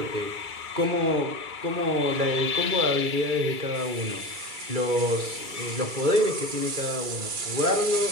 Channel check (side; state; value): left; late; 2.3 ms